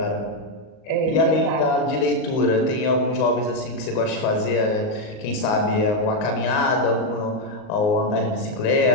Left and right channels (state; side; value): late; right; 38 ms